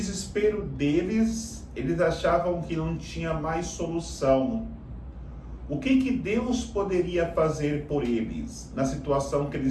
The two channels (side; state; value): both; identical; correlation 1.00